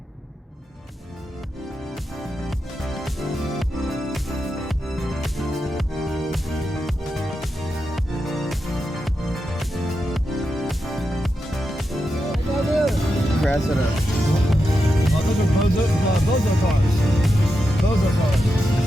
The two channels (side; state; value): both; normal; correlation 0.87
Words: rest of the. Oh, those are bozo cars. Bozo cars.